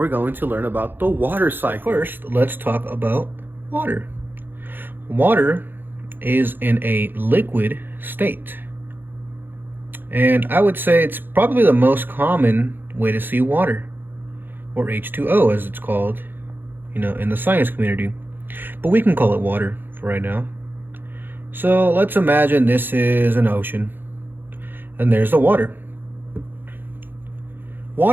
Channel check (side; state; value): left; late; 0.097 ms